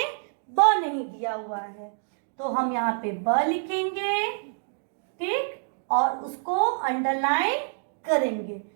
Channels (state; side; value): silent; left; digital silence